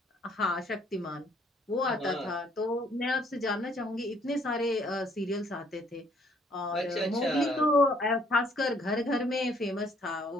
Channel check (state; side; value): normal; both; correlation 0.64